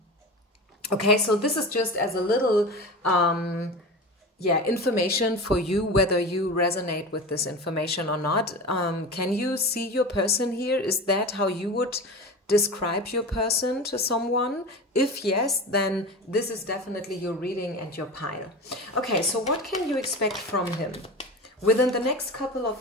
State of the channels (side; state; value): both; normal; correlation 0.29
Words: Okay, so this is just as a little information for you, whether you resonate with this information or not. Can you see your person here? Is that how you would describe your person to someone? If yes, then this is definitely your reading and your pile. Okay, so what can you expect from him within the next couple